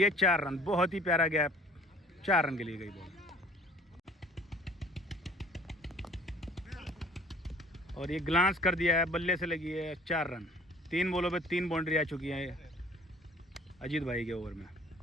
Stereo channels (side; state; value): both; normal; correlation 0.51